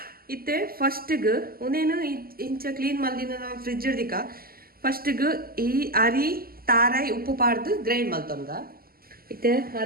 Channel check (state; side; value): late; left; 0.43 ms